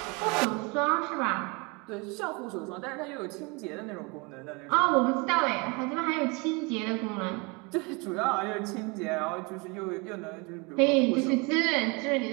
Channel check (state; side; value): quieter; left; 29.4 dB